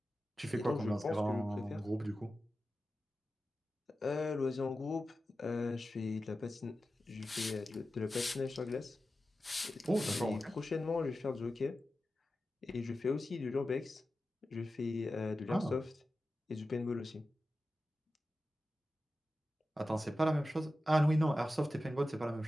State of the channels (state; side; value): normal; both; correlation 0.93